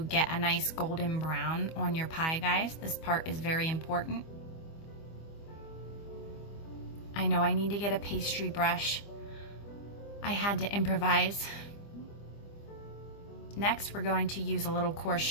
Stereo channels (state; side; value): late; right; 25 ms